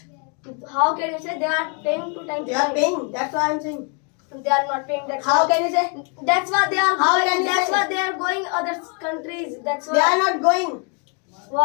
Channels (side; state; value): right; quieter; 36.9 dB